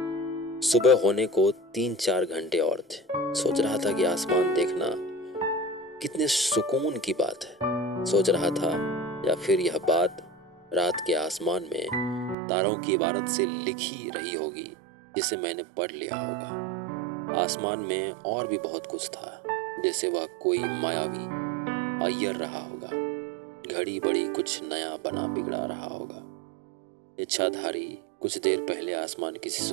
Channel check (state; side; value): drops out; left; at 12.4 s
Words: सुबह होने को 3-4 घंटे और थे। सोच रहा था कि आसमान देखना कितने सुकून की बात है। सोच रहा था, या फिर यह बात रात के आसमान में तारों की इबारत से लिखी रही होगी जिसे मैंने पढ़ लिया होगा। आसमान में और भी बहुत कुछ था, जैसे वह कोई मायावी अय्यर रहा होगा, घड़ी बड़ी कुछ नया बना बिगड़ा रहा होगा। इच्छाधारी कुछ देर पहले आसमान किसी